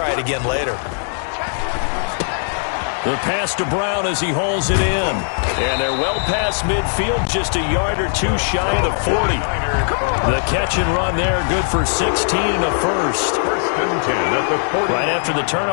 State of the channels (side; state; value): right; silent; digital silence